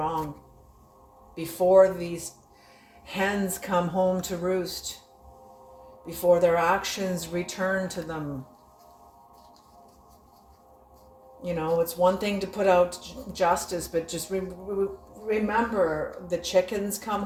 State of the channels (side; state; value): both; identical; correlation 1.00